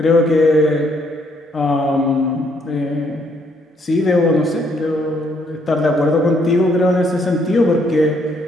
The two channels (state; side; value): normal; both; correlation 0.70